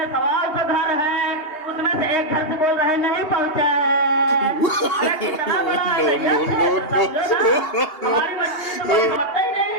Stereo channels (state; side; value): late; right; 2.8 ms